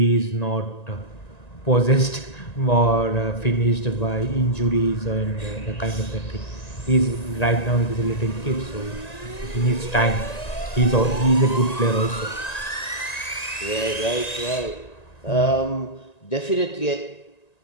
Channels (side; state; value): right; late; 1.9 ms